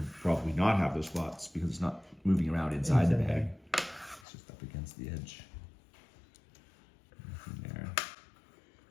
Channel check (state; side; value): drops out; right; at 4.2 s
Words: probably not have those spots because it's not moving around inside the bag. It's just up against the edge. Nothing there.